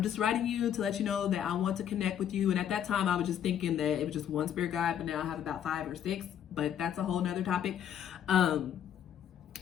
just writing you to let you know that I want to connect with you. And at that time, I was just thinking that it was just one spirit guide, but now I have about 5 or 6, but that's a whole nother topic.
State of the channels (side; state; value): right; quieter; 9.6 dB